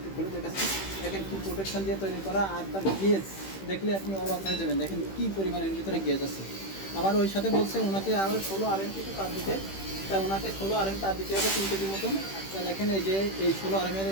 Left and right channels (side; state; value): right; late; 15 ms